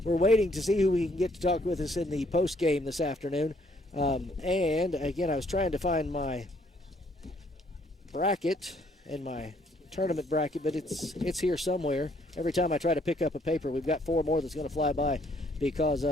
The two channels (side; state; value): both; normal; correlation 0.66